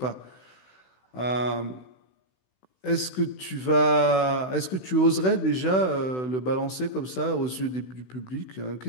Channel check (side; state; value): right; late; 16 ms